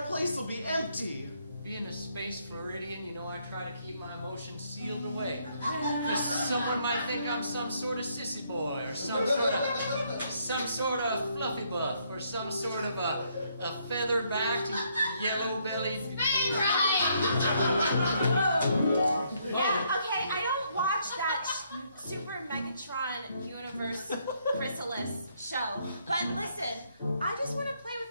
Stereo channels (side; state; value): both; inverted; correlation -0.71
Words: place will be empty. Being a space Floridian, you know I try to keep my emotions sealed away. Because someone might think I'm some sort of sissy boy, or some sort of fluffy buff, or some sort of a feather-backed, yellow-bellied... Spin right! Yeah, okay, I don't watch that Super Megatron Universe Chrysalis show. But listen, I just want to play